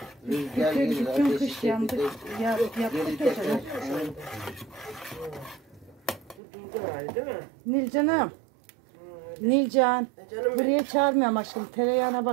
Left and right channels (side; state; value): left; drops out; at 6.4 s